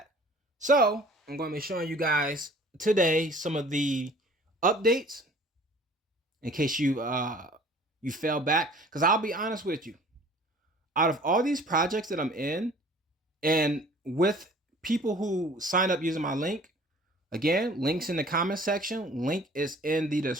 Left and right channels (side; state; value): both; normal; correlation 0.50